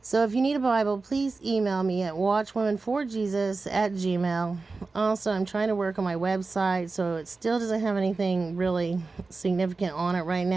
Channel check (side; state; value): left; quieter; 3.9 dB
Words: So if you need a Bible, please email me at watchwomanforjesus@gmail. Also, I'm trying to work on my website, so it still doesn't have anything really significant on it right